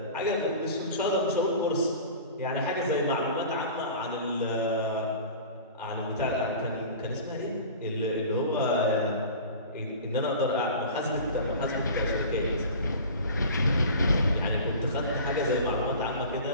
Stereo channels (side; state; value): both; inverted; correlation -0.38